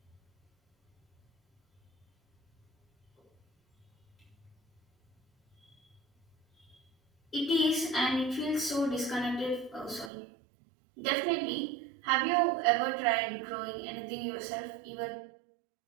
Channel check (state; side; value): drops out; left; at 10.1 s